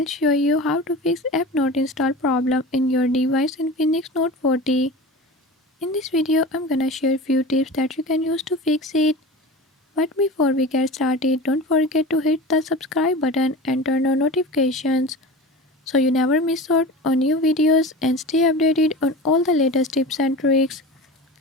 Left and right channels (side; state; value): both; normal; correlation 0.32